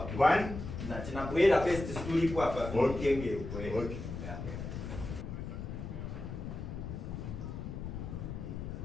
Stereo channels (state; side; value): noise; left; rumble, 7 dB below the sound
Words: Na tinabwera pesi story kwa hapa. Okay. Okay.